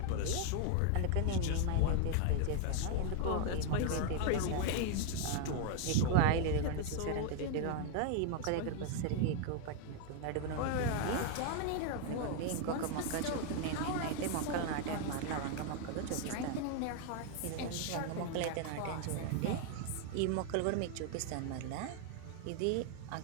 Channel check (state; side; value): different; both; correlation 0.00